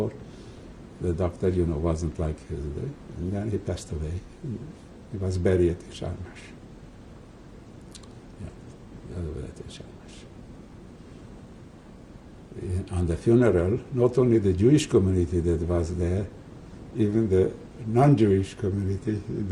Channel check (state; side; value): identical; both; correlation 1.00